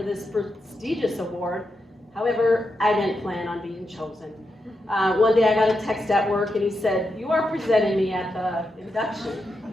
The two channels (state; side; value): normal; both; correlation 0.86